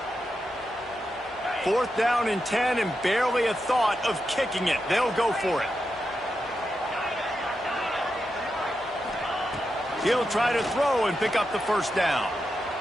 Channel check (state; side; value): normal; both; correlation 0.87